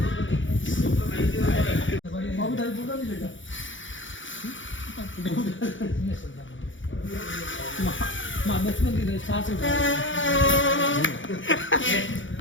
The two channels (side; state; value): right; late; 0.56 ms